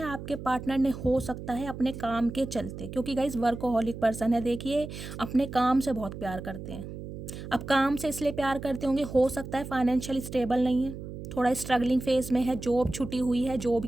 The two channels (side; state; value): right; noise; hum, 10 dB below the sound